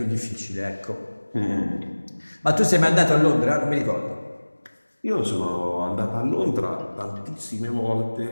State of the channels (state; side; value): inverted; both; correlation -1.00